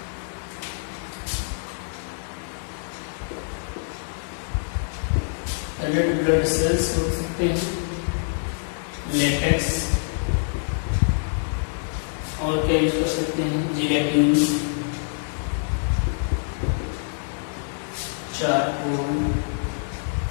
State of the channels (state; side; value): silent; right; digital silence